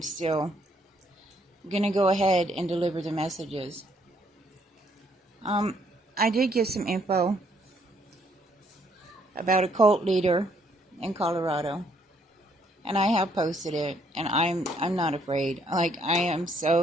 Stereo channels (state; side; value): normal; both; correlation 0.69